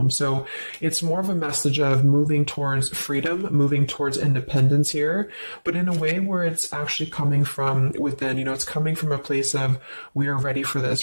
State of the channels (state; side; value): inverted; both; correlation -1.00